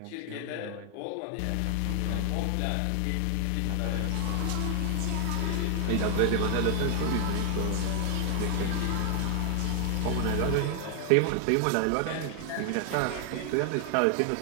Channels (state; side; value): different; both; correlation 0.00